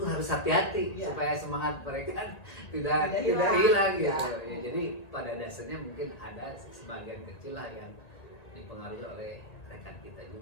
harus hati-hati Ya. supaya semangat mereka Tidak tidak hilang. hilang gitu. Ya. Ya, jadi pada dasarnya mungkin ada sebagian kecil lah yang dipengaruhi oleh rekan kita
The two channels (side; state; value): right; late; 1.8 ms